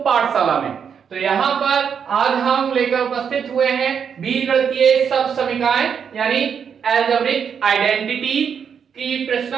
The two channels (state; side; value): quieter; left; 7.2 dB